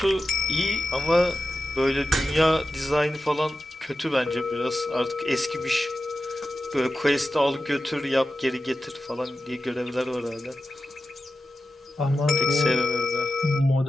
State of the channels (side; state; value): both; normal; correlation 0.92